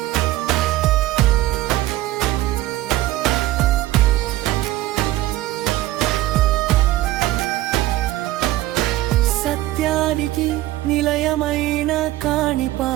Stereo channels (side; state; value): left; quieter; 16.0 dB